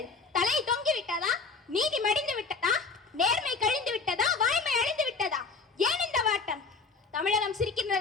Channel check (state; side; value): quieter; right; 4.4 dB